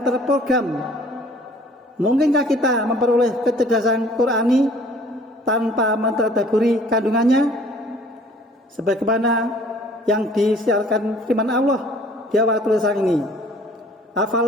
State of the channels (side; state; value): both; normal; correlation 0.54